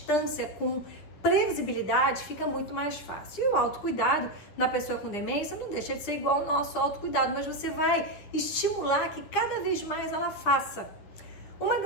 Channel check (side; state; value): right; late; 10 ms